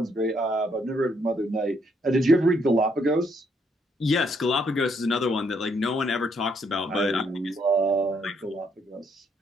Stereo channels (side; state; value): both; normal; correlation 0.72